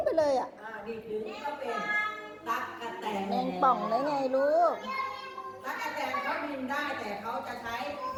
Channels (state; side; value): identical; both; correlation 1.00